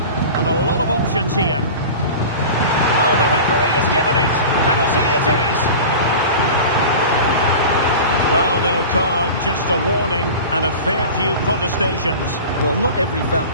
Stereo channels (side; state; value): both; inverted; correlation -0.34